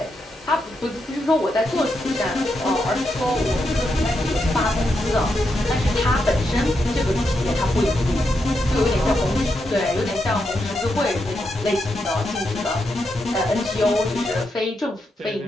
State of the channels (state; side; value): normal; both; correlation 0.83